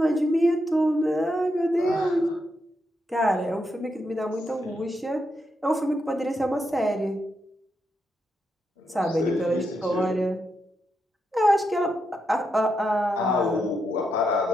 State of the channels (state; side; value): normal; both; correlation 0.83